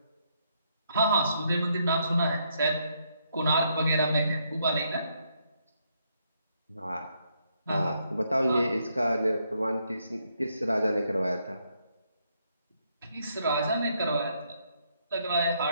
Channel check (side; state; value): both; inverted; correlation -0.75